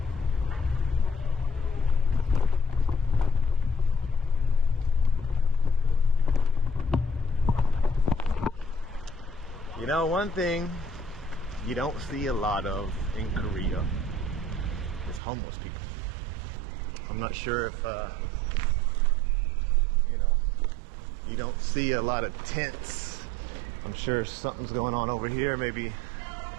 You know, one thing you don't see a lot of in Korea is homeless people. I'm not sure if you know, you don't see a lot of tents. I'm sure something's going on over here. Maybe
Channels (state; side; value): drops out; left; at 15.2 s